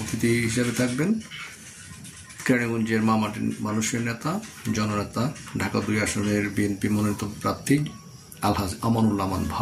অতিথি হিসেবে থাকবেন কেরানীগঞ্জের মামাটির মানুষের নেতা, জননেতা, ঢাকা ২ আসনের বিএনপি মনোনীত প্রার্থী আলহাজ আমানুল্লাহ আমান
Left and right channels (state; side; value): identical; both; correlation 1.00